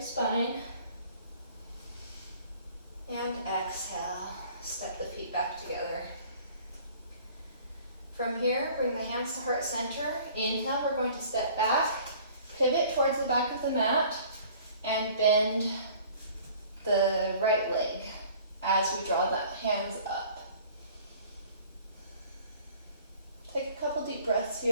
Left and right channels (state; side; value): inverted; both; correlation -0.51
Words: spine. And exhale, step the feet back together. From here, bring the hands to heart center. Inhale, we're going to step back, pivot towards the back of the mat, and bend the right leg as we draw the hands up. Take a couple deep breaths